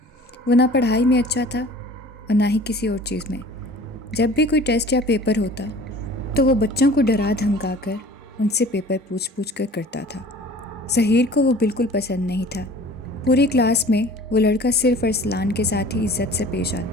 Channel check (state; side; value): normal; both; correlation 0.46